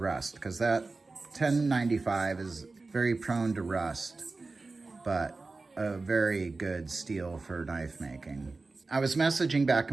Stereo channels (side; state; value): left; quieter; 3.7 dB